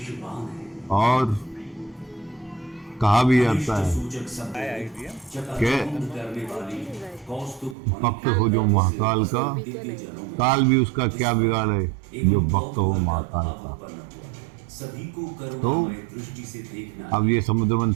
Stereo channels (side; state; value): left; drops out; at 7.8 s